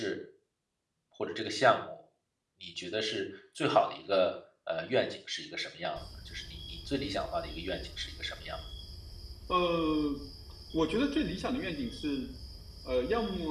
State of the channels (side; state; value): both; identical; correlation 1.00